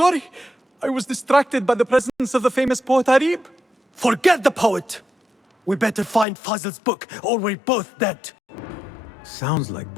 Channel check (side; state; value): right; drops out; at 6.2 s